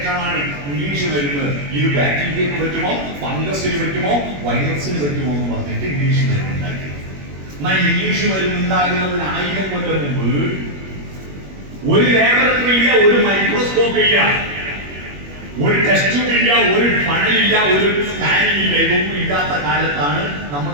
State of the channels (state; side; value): late; left; 21 ms